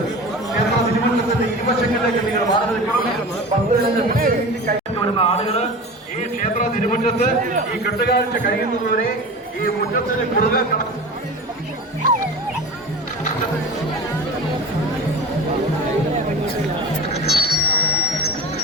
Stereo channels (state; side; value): normal; both; correlation 0.32